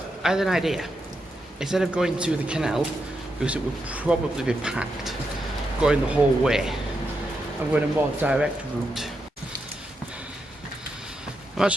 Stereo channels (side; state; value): both; normal; correlation 0.84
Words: I had an idea. Instead of going to the canal, because it would probably be packed, going the whole way, I'm going a more direct route. I'm